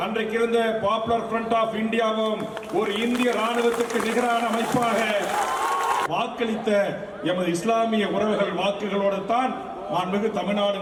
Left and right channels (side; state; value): both; identical; correlation 1.00